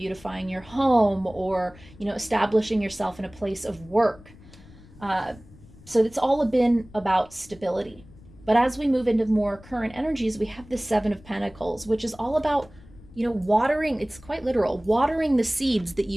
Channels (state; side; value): noise; left; rumble, 22 dB below the sound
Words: your home or, establishing yourself in a place of work. So it's all been about stability. But as we move into more current energies, we have the Seven of Pentacles, which is all about watering, it's quite literal, watering the seeds that